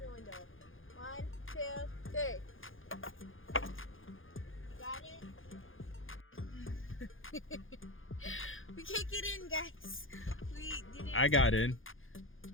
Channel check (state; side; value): late; right; 0.59 ms